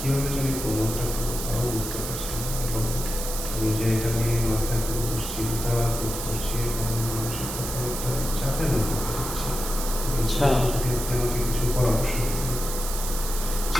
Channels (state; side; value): noise; right; hiss, 6 dB below the sound